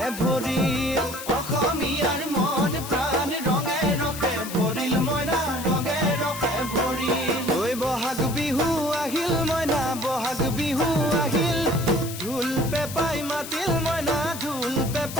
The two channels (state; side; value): noise; left; hiss, 10 dB below the sound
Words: ভৰিল অসমীয়াৰ মন প্ৰাণ ৰঙে ৰসে ভৰিল মইনা ৰঙে ৰসে ভৰিল ঐ বহাগ বিহু আহিল মইনা বহাগ বিহু আহিল ঢোল পেপাই মাতিল মইনা ঢোল